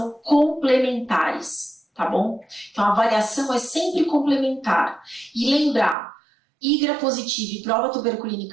complementares, tá bom? Então a avaliação é sempre complementar. E lembrar, IGRA positivo e prova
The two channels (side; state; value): left; drops out; at 6.0 s